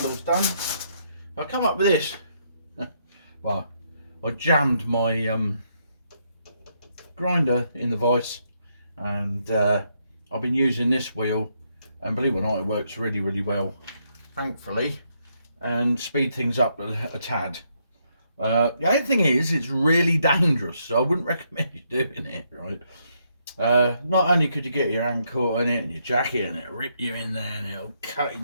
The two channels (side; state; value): both; inverted; correlation -0.76